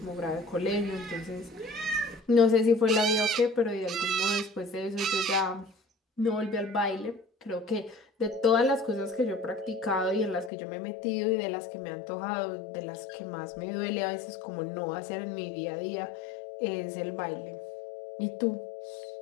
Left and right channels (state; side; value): drops out; right; at 10.5 s